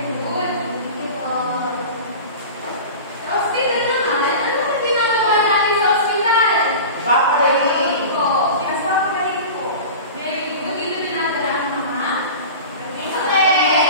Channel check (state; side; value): inverted; both; correlation -0.33